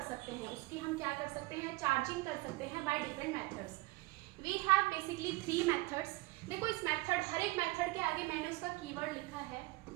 सकते हैं, उसकी हम क्या कर सकते हैं, चार्जिंग कर सकते हैं by different methods. We have basically 3 methods. देखो इस मेथड, हर एक मेथड के आगे मैंने उसका कीवर्ड लिखा है।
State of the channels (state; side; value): quieter; left; 21.8 dB